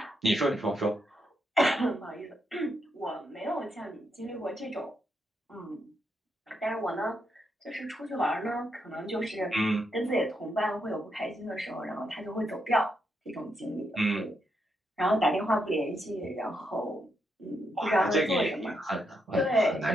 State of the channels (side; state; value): both; normal; correlation 0.80